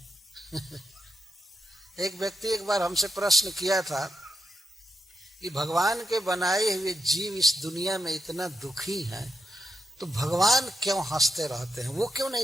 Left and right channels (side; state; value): both; normal; correlation 0.85